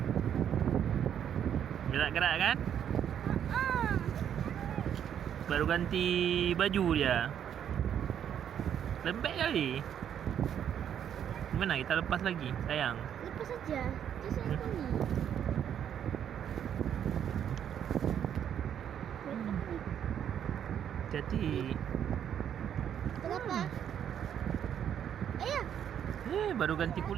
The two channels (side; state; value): left; quieter; 9.3 dB